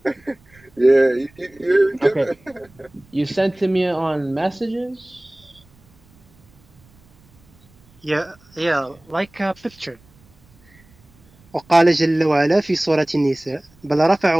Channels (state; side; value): noise; right; rumble, 30 dB below the sound